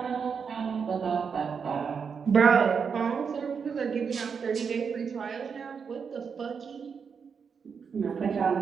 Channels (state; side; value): quieter; left; 6.2 dB